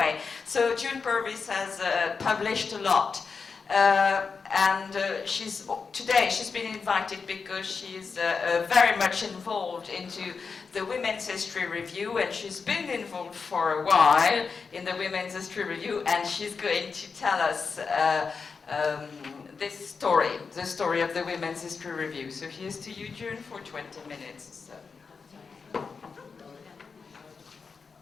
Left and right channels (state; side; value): quieter; right; 5.2 dB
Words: so June Purvis has published a lot, and today she's been invited because she's very much involved into the Women's History Review, and she's been involved for a while in the Women's History Review, and she's going to tell us this story, the story of the Women's History Review. So here's to you, June, for 20 minutes. So.